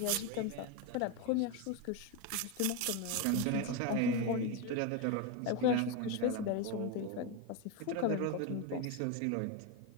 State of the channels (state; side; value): different; both; correlation 0.03